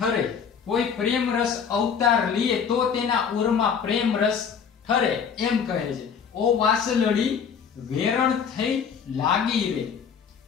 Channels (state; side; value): quieter; right; 6.9 dB